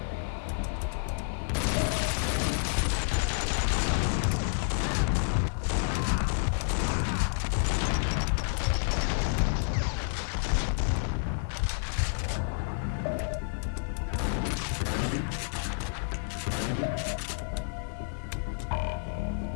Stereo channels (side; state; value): right; silent; 58 dB below the other